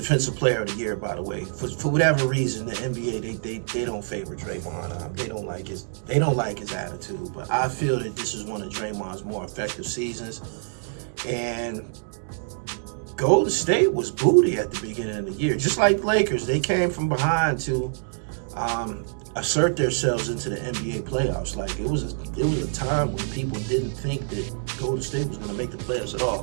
Player of the Year, by the way. For whatever reason, the NBA they don't favor Draymond. They don't like his attitude. But I feel that this is one of Draymond's more effective seasons. And Golden State was booty at the beginning of the year. Just like the Lakers, they came from behind to assert themselves into the NBA playoffs. Like it was a time when people didn't think that Golden State was going to make the playoffs at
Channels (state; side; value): silent; left; digital silence